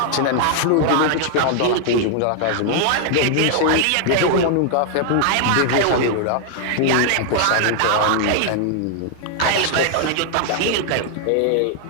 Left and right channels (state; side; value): different; both; correlation 0.00